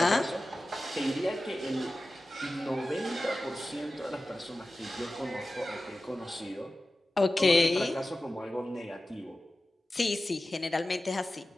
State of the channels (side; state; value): both; normal; correlation 0.95